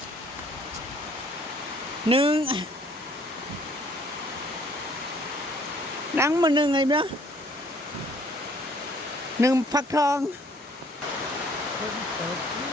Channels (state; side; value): normal; both; correlation 0.60